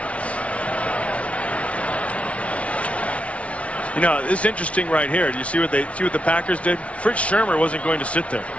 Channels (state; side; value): late; right; 0.063 ms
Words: You know, it's interesting right here. Do you see what the Packers did? Fritz Shermer wasn't going to sit there.